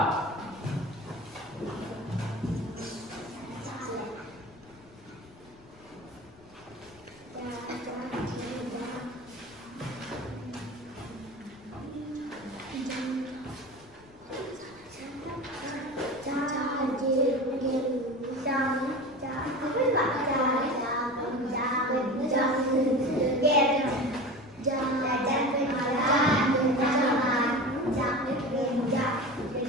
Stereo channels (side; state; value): left; noise; rumble, 26 dB below the sound